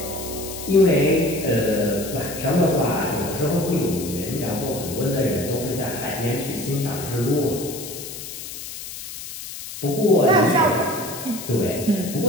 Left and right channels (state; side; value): noise; left; hiss, 10 dB below the sound